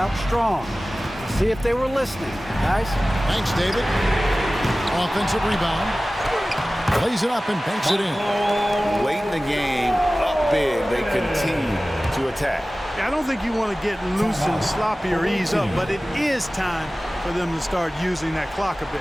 strong. See if they were listening, guys. Thanks, David. Offensive rebound. Plays it up and banks it in. Late in the game, up big, they continue to attack. I don't think you want to get loose and sloppy or ease up, but it is time for them to start using that clock a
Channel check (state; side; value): normal; both; correlation 0.97